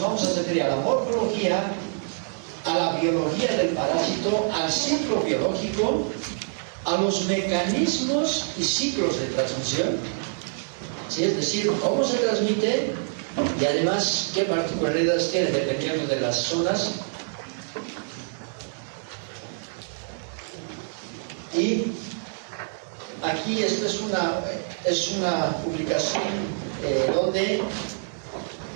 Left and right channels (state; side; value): silent; left; digital silence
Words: vamos a referir a la morfología, a la biología del parásito, al ciclo biológico, a los mecanismos y ciclos de transmisión, ¿sí?, es decir, cómo se transmite y además qué particularidades tiene dependiendo de las zonas. Y aquí esta es una publicación donde